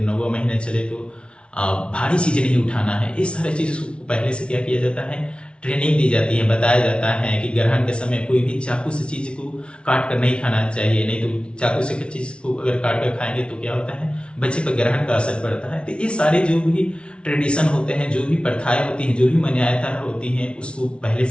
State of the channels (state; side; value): late; right; 0.058 ms